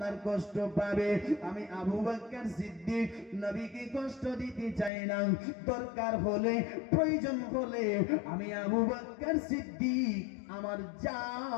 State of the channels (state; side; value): drops out; right; at 4.9 s